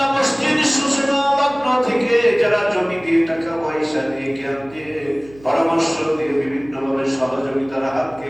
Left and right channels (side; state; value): right; noise; hum, 23 dB below the sound